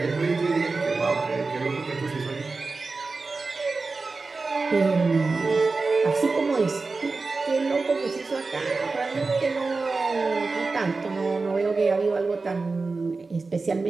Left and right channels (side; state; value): left; quieter; 3.9 dB